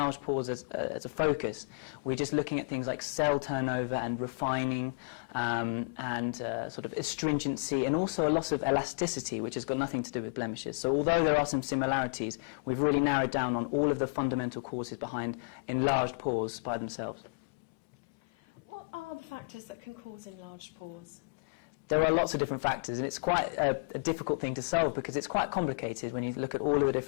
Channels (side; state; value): right; quieter; 37.7 dB